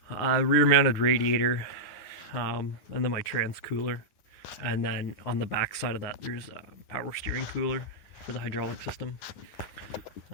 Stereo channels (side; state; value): right; late; 9.9 ms